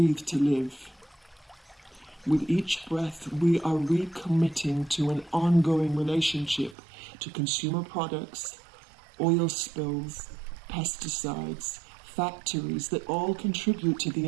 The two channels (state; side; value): drops out; left; at 6.8 s